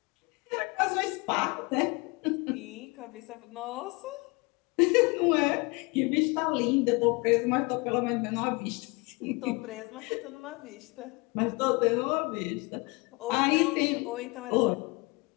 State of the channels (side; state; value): right; quieter; 27.3 dB